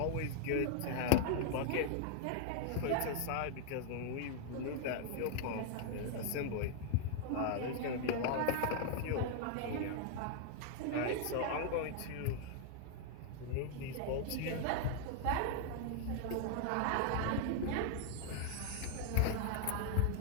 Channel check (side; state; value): both; different; correlation -0.01